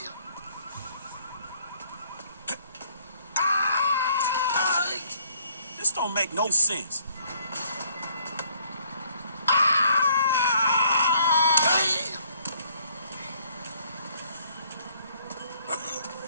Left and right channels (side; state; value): both; inverted; correlation -0.64